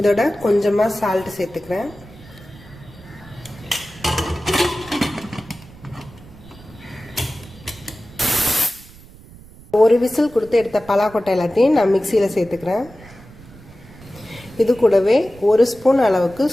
கொஞ்சமாக சால்ட் சேர்த்துக்கிறேன். ஒரு விசில் கொடுத்து எடுத்த பலாக்கொட்டை எல்லாத்தையும் நான் மிக்சியில் சேர்த்துக்கிறேன். இது கூடவே 1 ஸ்பூன் அளவுக்கு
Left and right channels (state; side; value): noise; right; rumble, 21 dB below the sound